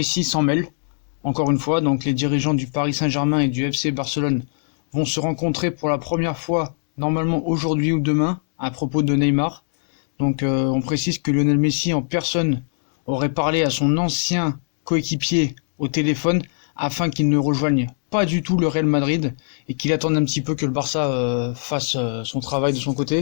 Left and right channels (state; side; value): silent; right; digital silence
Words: s'en mêle. Encore une fois, donc les dirigeants du Paris Saint-Germain et du FC Barcelone vont se rencontrer pour la première fois, normalement aujourd'hui ou demain, à propos de Neymar. Donc on précise que Lionel Messi en personne aurait parlé à son ancien coéquipier au téléphone afin qu'il ne rejoigne pas du tout le Real Madrid et qu'il attende un petit peu que le Barça fasse son travail de son